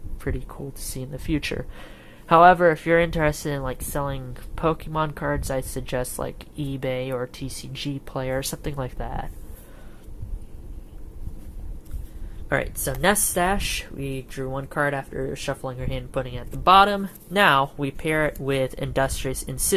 pretty cool to see in the future. However, if you're interested in like selling Pokemon cards, I suggest like eBay or TCG Player, something like that. Alright, so Nest Stash, we drew one card after shuffling our hand and putting it at the bottom. Now, we pair it with Industrious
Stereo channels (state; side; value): identical; both; correlation 1.00